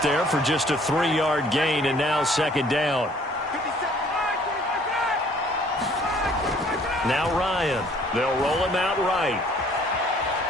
there for just a 3-yard gain, and now second down. Now Ryan. They'll roll him out right.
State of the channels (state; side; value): normal; both; correlation 0.58